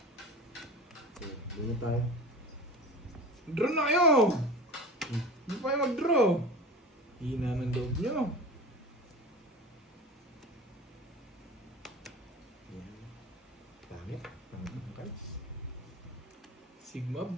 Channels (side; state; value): both; normal; correlation 0.33